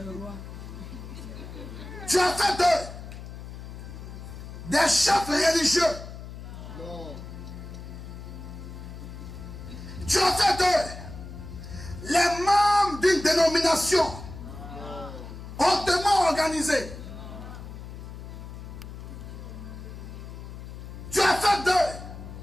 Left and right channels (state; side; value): noise; left; hum, 11 dB below the sound